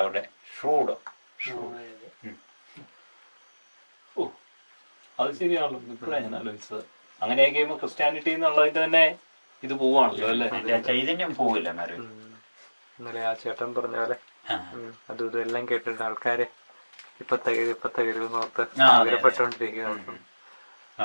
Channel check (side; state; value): both; inverted; correlation -1.00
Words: അവിടെ. ഷ്രൂഡ്. അത് ശരിയാണല്ലോ. ഇപ്പോഴാണ് ഞാൻ ആലോചിച്ചത്. അങ്ങനെയൊക്കെ ക്രിസ്ത്യാനിറ്റി എന്നുള്ളതിന്റെ തന്നെ ഇത് പോവാണല്ലോ അല്ലേ? അതിന്റെ ആ ചൈതന്യം പോവില്ല മാറി. ഇന്നലെ ആ ചേട്ടൻ പറഞ്ഞ പോലെ അതും ഇതും എല്ലാം കേട്ടിട്ട് ആൾക്കാര് ഇപ്പൊ തകരുന്നോർത്ത് ആഗ്രഹപ്പെട്ടോണ്ടിരിക്കുന്നു.